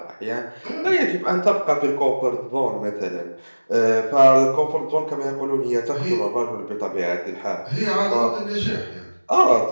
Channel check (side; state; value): both; inverted; correlation -1.00